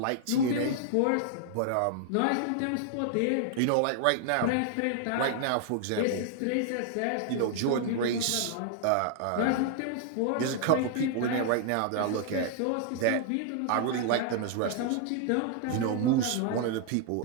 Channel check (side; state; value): both; different; correlation 0.00